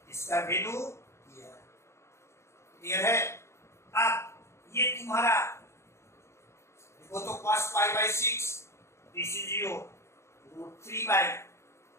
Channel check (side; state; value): right; late; 0.13 ms